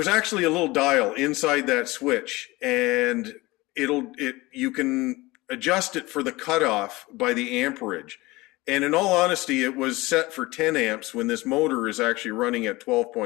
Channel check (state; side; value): quieter; right; 21.2 dB